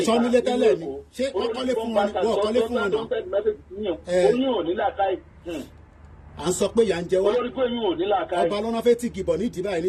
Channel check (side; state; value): both; identical; correlation 1.00